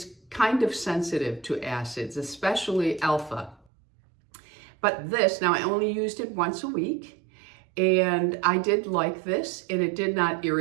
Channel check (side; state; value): left; drops out; at 3.6 s